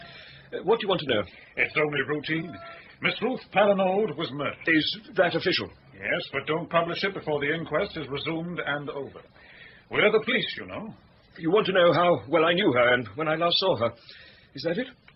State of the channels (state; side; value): identical; both; correlation 1.00